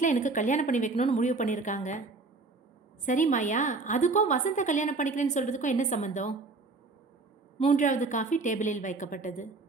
எனக்கு கல்யாணம் பண்ணி வைக்கணும்னு முடிவு பண்ணியிருக்காங்க. சரி மாயா, அதுக்கும் வசந்தை கல்யாணம் பண்ணிக்கிறேன்னு சொல்கிறதுக்கும் என்ன சம்மந்தம்? 3வது காஃபி டேபிளில் வைக்கப்பட்டது.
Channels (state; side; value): quieter; left; 3.7 dB